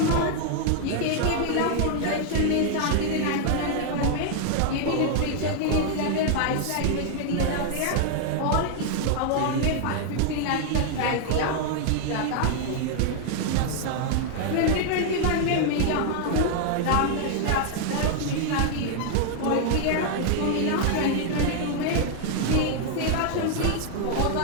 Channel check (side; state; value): both; different; correlation 0.00